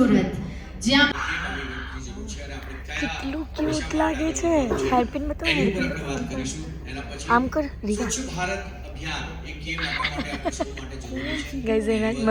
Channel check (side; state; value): both; identical; correlation 1.00